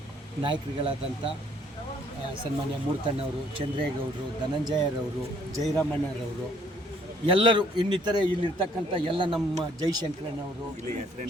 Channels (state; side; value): normal; both; correlation 0.63